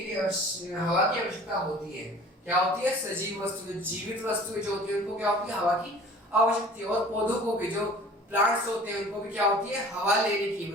हवा की आवश्यकता होती है। क्या होती है? सजीव वस्तु, जो जीवित वस्तुएं जो होती है उनको क्या होती है? हवा की आवश्यकता है। और पौधों को भी, जो प्लांट्स होते हैं उनको भी क्या होती है? हवा लेने की,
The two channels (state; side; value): normal; both; correlation 0.46